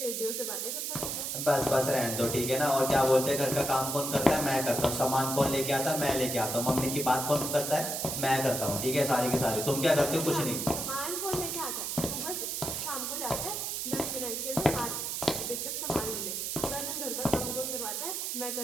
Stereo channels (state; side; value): noise; right; hiss, 2 dB below the sound